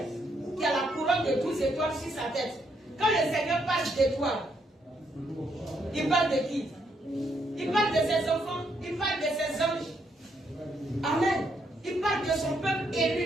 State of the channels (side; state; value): both; normal; correlation 0.75